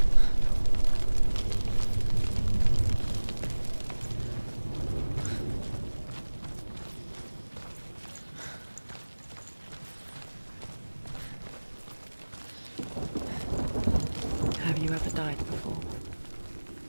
Have you ever died before?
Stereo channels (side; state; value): both; inverted; correlation -1.00